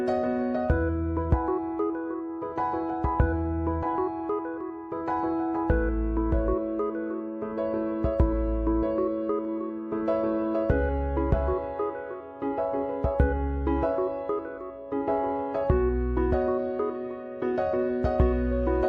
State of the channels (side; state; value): both; identical; correlation 1.00